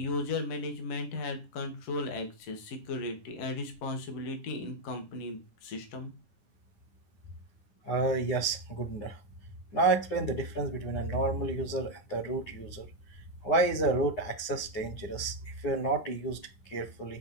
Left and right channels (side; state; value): right; late; 9.8 ms